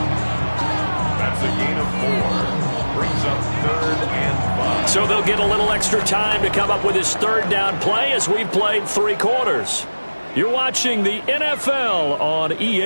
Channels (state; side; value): inverted; both; correlation -1.00